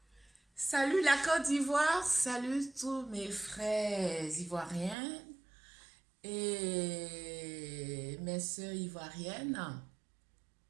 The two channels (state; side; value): drops out; left; at 5.0 s